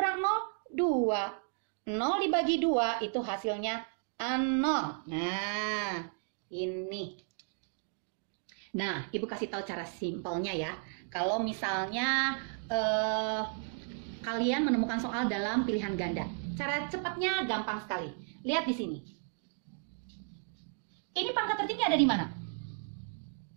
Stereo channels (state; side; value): silent; left; 55 dB below the other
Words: 0, 2. 0 dibagi 2 itu hasilnya 0. Nah, ini. Nah, Ibu kasih tahu cara simpelnya ya. Kalau misalnya kalian menemukan soal dalam pilihan ganda. Cara cepatnya gampang sekali. Lihat di sini. Ini pangkat tertinggi ada di mana?